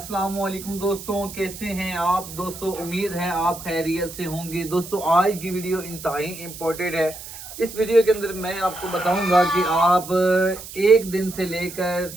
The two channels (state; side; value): noise; right; hiss, 13 dB below the sound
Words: वालेकुम दोस्तों, कैसे हैं आप दोस्तों। उम्मीद है आप खैरियत से होंगे। दोस्तों आज की वीडियो इंतहाई इम्पोर्टेंट है। इस वीडियो के अंदर मैं आपको बताऊंगा कि आप एक दिन से लेकर